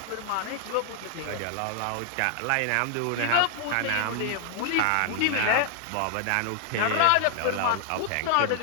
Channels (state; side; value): different; both; correlation 0.00